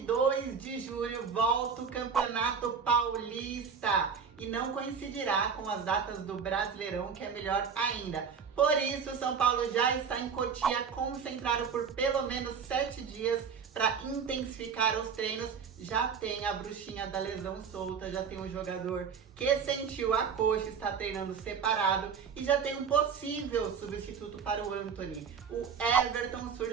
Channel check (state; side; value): quieter; left; 6.4 dB